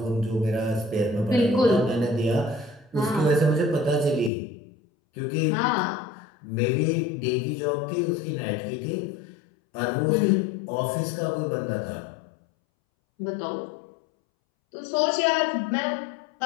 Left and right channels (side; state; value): right; drops out; at 4.3 s